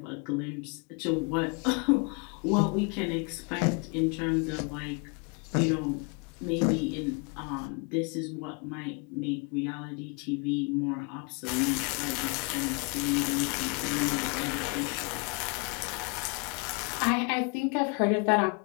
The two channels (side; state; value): right; quieter; 33.7 dB